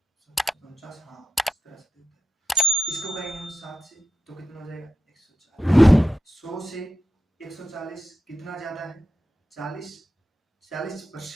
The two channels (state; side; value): normal; both; correlation 0.88